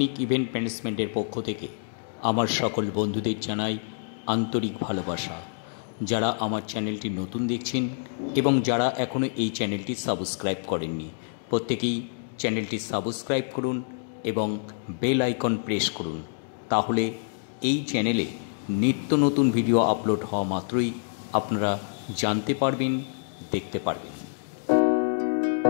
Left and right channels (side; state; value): right; silent; digital silence